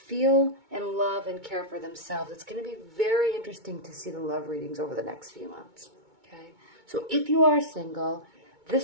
and love and care for themselves, it's going to be very interesting to see the love readings over the next few months. Okay, so if you are single,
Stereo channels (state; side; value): late; left; 2.2 ms